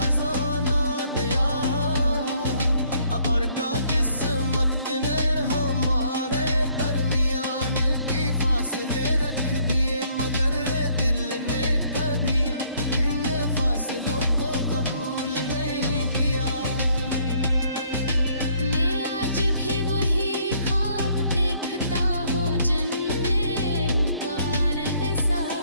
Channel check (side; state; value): both; inverted; correlation -0.66